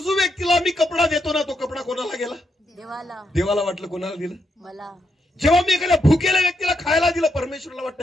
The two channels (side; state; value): both; normal; correlation 0.80